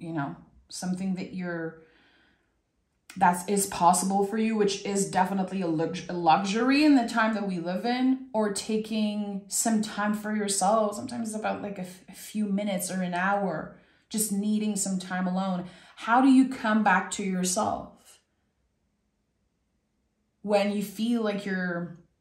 something that is possible for you, which is definitely a luxury in the time that we live in, or taking some time for yourself. Sometimes it's about like a few minutes or an hour, just needing some time alone. How do you come back to yourself when you feel like you're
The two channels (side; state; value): both; identical; correlation 1.00